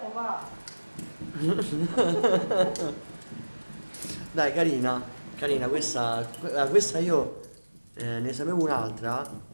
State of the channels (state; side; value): inverted; both; correlation -1.00